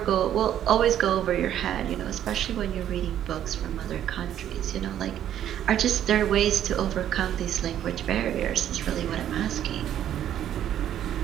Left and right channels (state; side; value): quieter; left; 10.8 dB